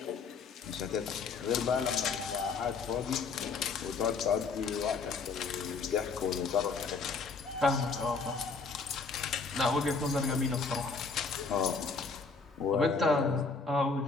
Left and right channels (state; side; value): quieter; right; 4.6 dB